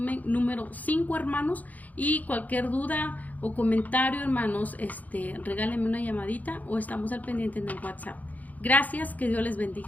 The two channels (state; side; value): late; right; 0.078 ms